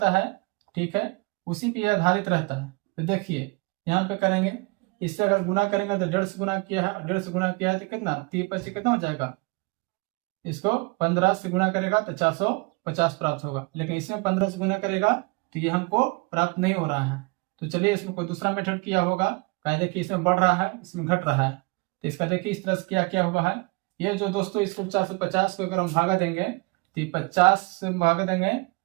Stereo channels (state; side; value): quieter; left; 27.6 dB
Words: है, ठीक है, उसी पे आधारित रहता है। तो देखिए यहाँ पे करेंगे, इससे अगर गुना करेंगे तो 1.5 से गुना किया है, 1.5 से गुना किया है तो कितना 3 कितना हो जाएगा। इसको 15 से गुना करेगा तो 450 प्राप्त होगा, लेकिन इसमें 15 से गुना करेगा तो ये हमको प्राप्त नहीं हो रहा है। तो चलिए इसमें कोई दूसरा मेथड किया होगा। देखिए इसमें बढ़ रहा है, इसमें घट रहा है। तो इसका देखिए इस तरह से क्या हुआ है। ये जो दोस्तों इसको 450 को अगर हम भागा देंगे तो 50 से भागा देंगे